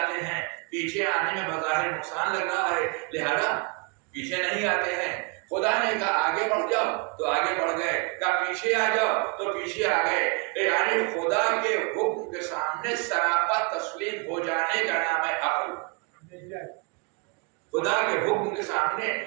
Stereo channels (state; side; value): quieter; left; 33.6 dB